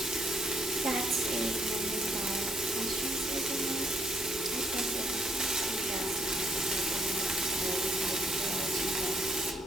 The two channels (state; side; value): normal; both; correlation 0.71